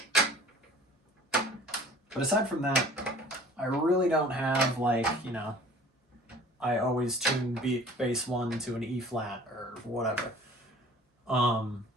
But aside from that, I really don't have like, you know, I always tune bass 1 to an E flat or whatever.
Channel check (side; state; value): both; normal; correlation 0.48